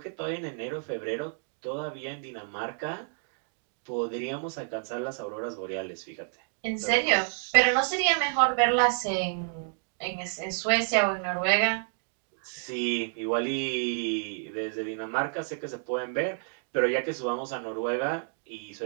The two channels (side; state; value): left; silent; 56 dB below the other